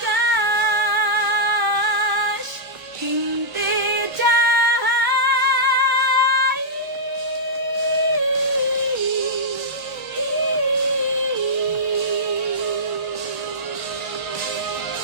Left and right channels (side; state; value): left; late; 1.1 ms